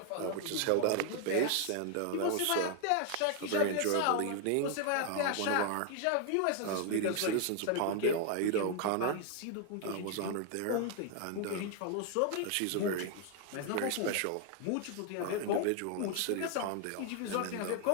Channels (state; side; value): different; both; correlation 0.00